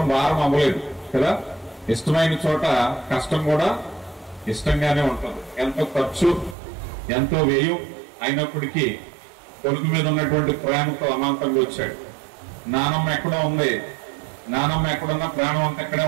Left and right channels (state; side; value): drops out; left; at 6.6 s